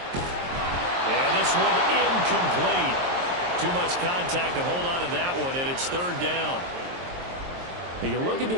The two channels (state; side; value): late; left; 23 ms